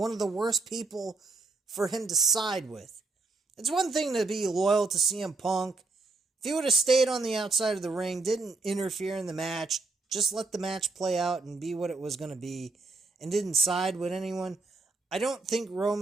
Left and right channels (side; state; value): left; quieter; 3.5 dB